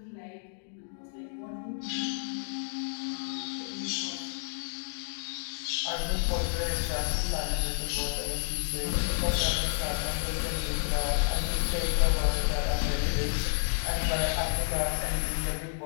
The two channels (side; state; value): right; silent; digital silence